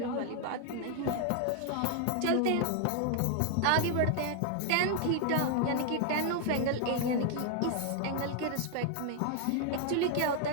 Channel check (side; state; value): both; different; correlation 0.00